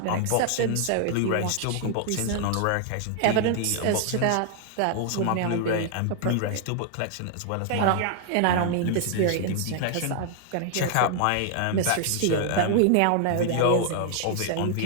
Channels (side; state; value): both; different; correlation 0.00